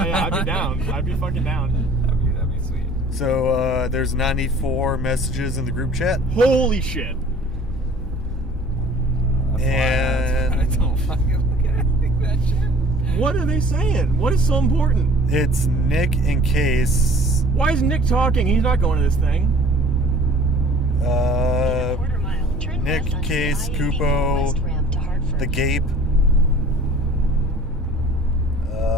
Yeah, I'd be down. I'd be fucking down. That'd be sweet. So there's 94 messages in the group chat. Holy shit. And- I don't fucking look at anything that shit. What are they saying? What is so important? It's Nick and Case. Why is Nick talking? He's not going to this thing. Quarter mile. Turn Nick, left onto Case, the I-84 Kupo, West ramp to Hartford. the Gape.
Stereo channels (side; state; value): both; normal; correlation 0.49